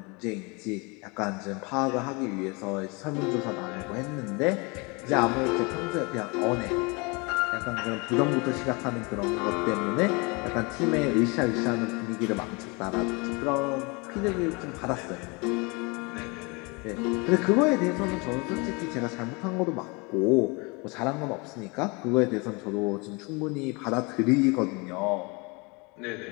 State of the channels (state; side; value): quieter; right; 28.8 dB